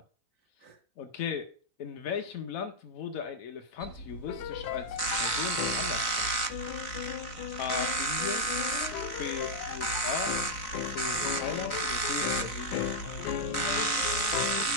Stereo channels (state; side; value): late; right; 4.0 ms